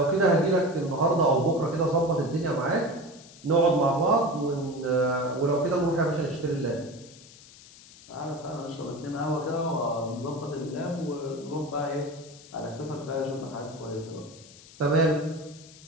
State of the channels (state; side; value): noise; left; hiss, 21 dB below the sound